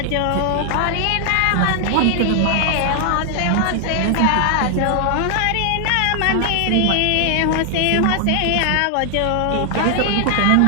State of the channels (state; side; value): different; both; correlation 0.00